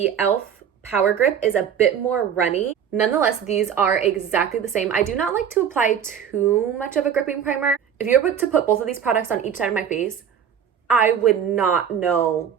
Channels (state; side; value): quieter; left; 8.3 dB